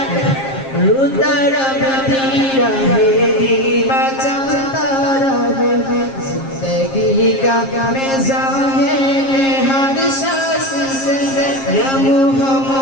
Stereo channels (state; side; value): late; right; 7.5 ms